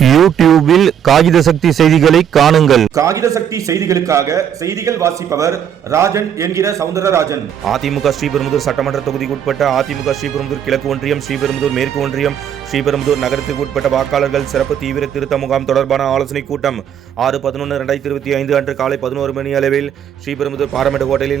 யூடியூபில் காகித சக்தி செய்திகளை காணுங்கள். காகித சக்தி செய்திகளுக்காக செய்திகள் வாசிப்பவர் ராஜன் என்கிற சவுந்தரராஜன். அதிமுக ஸ்ரீபெரும்புதூர் சட்டமன்ற தொகுதிக்கு உட்பட்ட அதிமுக ஸ்ரீபெரும்புதூர் கிழக்கு ஒன்றியம், ஸ்ரீபெரும்புதூர் மேற்கு ஒன்றியம், ஸ்ரீபெரும்புதூர் நகரத்திற்கு உட்பட்ட வாக்காளர்கள் சிறப்பு தீவிர திருத்த முகாம் தொடர்பான ஆலோசனை கூட்டம் 6/11/2025 அன்று காலை 11 மணி அளவில் ஸ்ரீபெரும்புதூர் பாராமெட்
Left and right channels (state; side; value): quieter; left; 9.0 dB